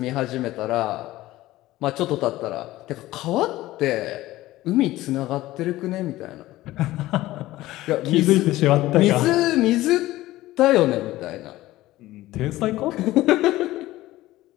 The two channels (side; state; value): right; quieter; 16.7 dB